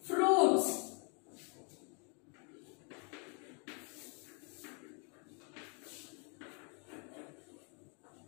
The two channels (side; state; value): right; quieter; 36.9 dB